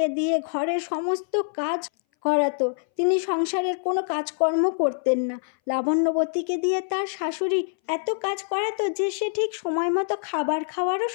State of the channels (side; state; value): right; silent; 61 dB below the other